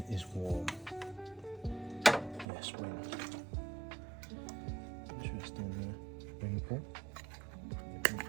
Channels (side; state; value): left; drops out; at 2.5 s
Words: is warm. Yes, wind. Interesting spring pull.